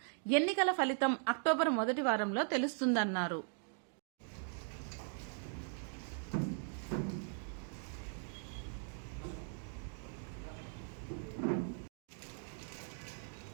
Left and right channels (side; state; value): left; silent; 51 dB below the other